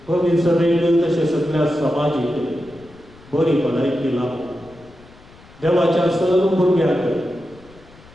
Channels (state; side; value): noise; left; rumble, 24 dB below the sound